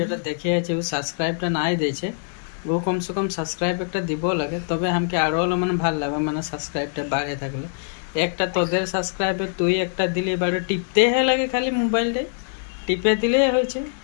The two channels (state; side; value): silent; right; digital silence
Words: দেখে আছে ও সাবস্ক্রাইবটা নাই দিয়েছে, ও কমসে কম সাবস্ক্রাইব একটা দিব লাগে, তবে আমাকে আরো মানে ভাল লাগবে, মানে সাবস্ক্রাইবটা বাড়ে থাকলে। একটা তোদের সাবস্ক্রাইবে তুই একটা দিলে বাড়ে টিপতে লাগে, খালি মোবাইলটাই টিপে দিলেই হয়েছে।